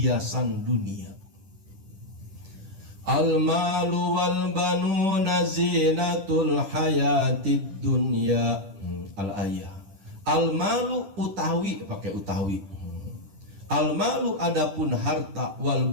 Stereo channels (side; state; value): left; late; 10 ms